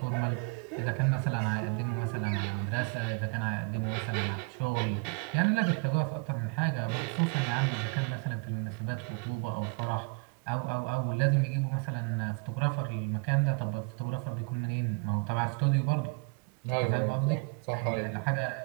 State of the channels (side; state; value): left; quieter; 32.6 dB